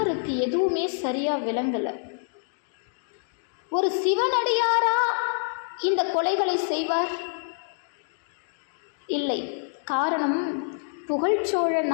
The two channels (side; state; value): right; silent; digital silence